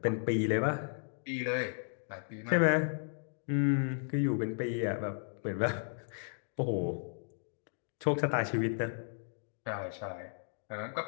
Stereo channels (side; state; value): right; silent; digital silence